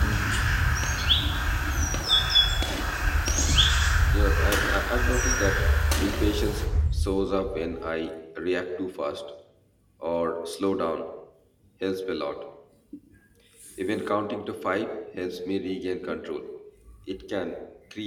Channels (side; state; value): both; identical; correlation 1.00